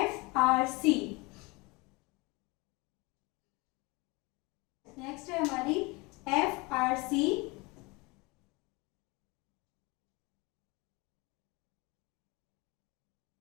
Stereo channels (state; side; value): quieter; right; 25.6 dB